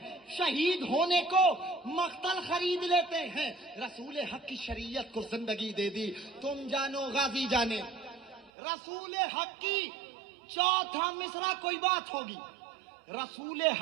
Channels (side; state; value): left; drops out; at 8.5 s